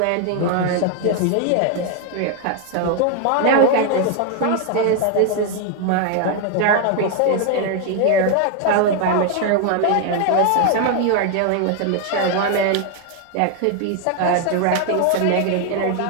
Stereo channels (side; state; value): both; different; correlation 0.00